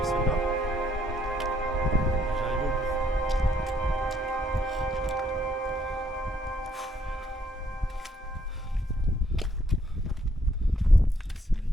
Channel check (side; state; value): both; normal; correlation 0.70